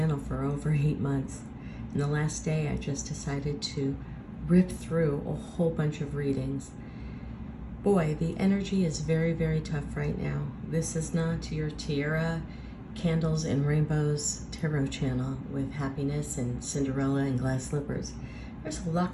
for over 8 months. And the last day I just decided to rip through a whole bunch of readings. Boy, the energy is very, very tough right now. This is not your tiara, candles and rainbows tarot channel with happiness and Cinderella and glass slippers. There's a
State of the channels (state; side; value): identical; both; correlation 1.00